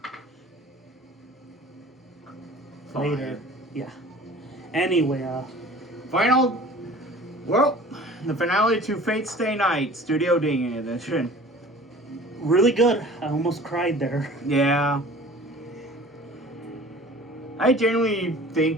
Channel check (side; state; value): both; normal; correlation 0.45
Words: Fine. Later. Yeah. Anyway, Final. Well, the finale to Fate Stay Night, Studio Ding edition. really good. I almost cried there. Yeah. I genuinely